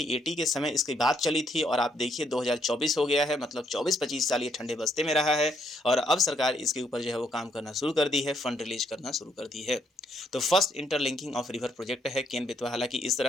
के समय इसकी बात चली थी और आप देखिए 2024 हो गया है, मतलब 24-25 साल ये ठंडे बस्ते में रहा है और अब सरकार इसके ऊपर जो है वो काम करना शुरू कर दी है, फंड रिलीज करना शुरू कर दी है। तो first interlinking of river project है केन बेतवा। हालांकि इस तरह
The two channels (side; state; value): both; normal; correlation 0.73